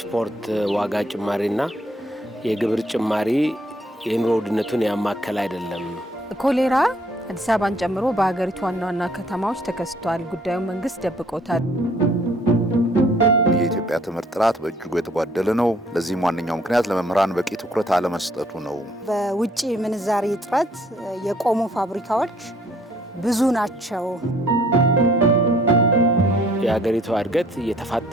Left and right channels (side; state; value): both; normal; correlation 0.62